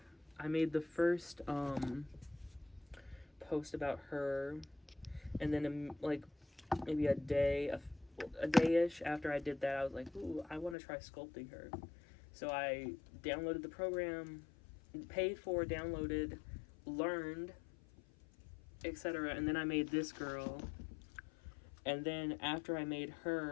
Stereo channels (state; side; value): drops out; right; at 10.8 s